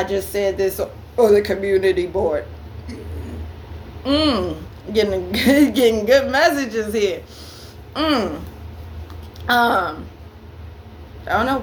just said this on the community board. Getting good messages here. I don't know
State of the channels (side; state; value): both; identical; correlation 1.00